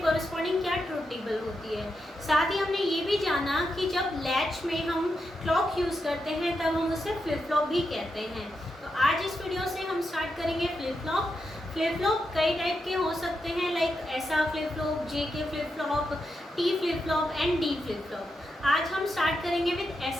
कॉरस्पॉन्डिंग क्या ट्रुथ टेबल होती है। साथ ही हमने ये भी जाना कि जब लैच में हम क्लॉक यूज़ करते हैं तब हम उसे फ्लिप फ्लॉप भी कहते हैं। तो आज इस वीडियो से हम स्टार्ट करेंगे फ्लिप फ्लॉप। फ्लिप फ्लॉप कई टाइप के हो सकते हैं, लाइक ऐसा flip flop, JK flip flop, T flip flop and D flip flop. आज हम स्टार्ट करेंगे विद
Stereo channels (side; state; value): both; normal; correlation 0.86